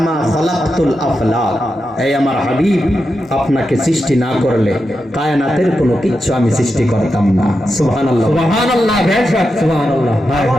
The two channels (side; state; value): both; normal; correlation 0.88